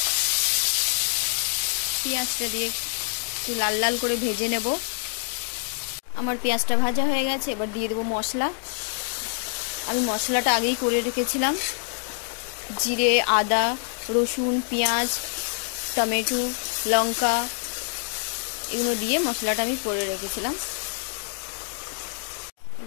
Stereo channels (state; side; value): silent; right; digital silence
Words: পেঁয়াজটা দিয়ে একটু লাল লাল করে ভেজে নেব। আমার পেঁয়াজটা ভাজা হয়ে গেছে, এবার দিয়ে দেবো মশলা। আমি মশলাটা আগেই করে রেখেছিলাম, জিরে, আদা, রসুন, পেঁয়াজ, টমেটো, লঙ্কা এগুলো দিয়ে মশলাটা আমি করে রেখেছিলাম।